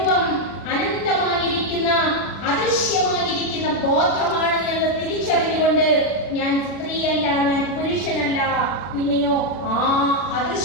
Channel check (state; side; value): late; right; 40 ms